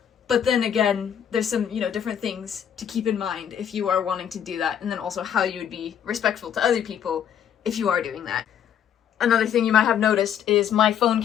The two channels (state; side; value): quieter; right; 9.0 dB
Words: But then again, there's some, you know, different things to keep in mind if you are wanting to do that, and then also how you would be respectful to other people if you are doing that. Another thing you might have noticed is my phone